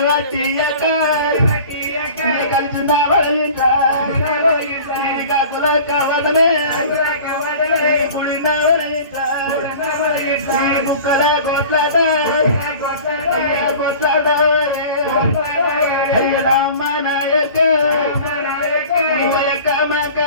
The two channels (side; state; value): both; inverted; correlation -0.42